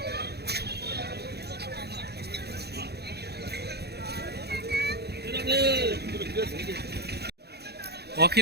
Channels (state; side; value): late; left; 0.48 ms